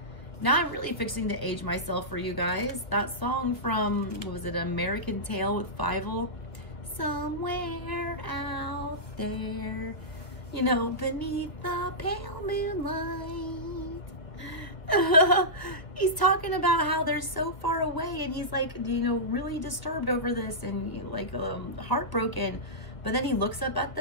Now I'm really fixing to age myself for you guys. That song from, what was it, American Tail with Fievel? Somewhere out there, you know, beneath the pale moonlight. He's talking about how they're so far away, and he's like, you know, really disturbed over this and, you know, like heartbroken. But then he looks up at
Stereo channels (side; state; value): right; late; 1.4 ms